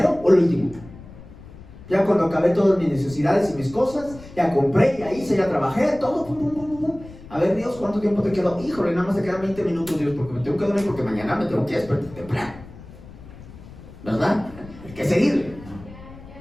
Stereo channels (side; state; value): left; noise; rumble, 18 dB below the sound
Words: o el último? Ya cuando acabé todas mis necesidades y mis cosas, ya compré, ya hice, ya trabajé, todo, pum, pum, pum, pum. A ver, Dios, ¿cuánto tiempo te quedó? Híjole, nada más te quedan 20 minutos, Dios, porque me tengo que dormir, porque mañana me tengo que despertar temprano. ¿Verdad? Hay que seguirle.